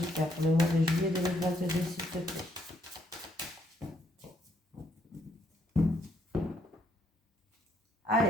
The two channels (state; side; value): normal; both; correlation 0.71